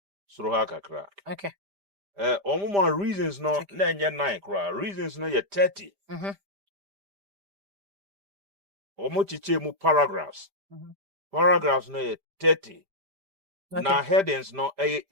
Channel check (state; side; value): late; left; 5.0 ms